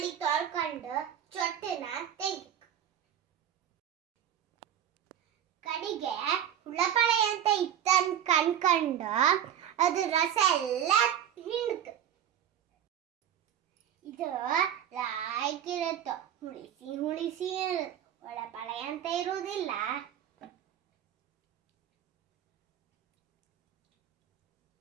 ತೊಳ್ಕೊಂಡು ಚೊಟ್ಟನ ತೆಗಿ. ಕಡಿಗೆ ಹುಳಪಳೆ ಅಂತ ಇತ್ತನ್ ಕಣ್ಕಂಡು ಅದು ರಸ ಎಲ್ಲ ಹಿಂಡ್ಕ. ಇದು ಲಾಯ್ಕ್ ಇರುತ್ತೋ, ಹುಳಿಸಿ ಹುಳಿಸಿ ಹುಳಪಳೆ ಅಂತ ಇರುವುದಿಲ್ಲ.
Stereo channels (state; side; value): quieter; left; 10.0 dB